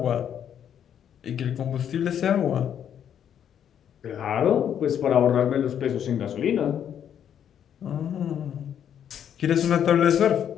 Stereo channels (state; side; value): quieter; right; 9.2 dB